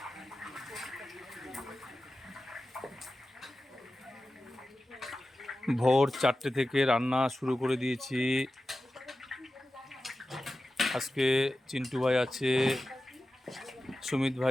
ভোর 4টে থেকে রান্না শুরু করে দিয়েছি। আজকে চিন্টু ভাই আছে, সুমিত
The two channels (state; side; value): normal; both; correlation 0.94